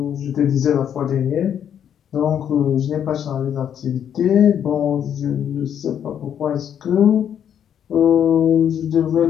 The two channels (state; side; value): quieter; right; 9.1 dB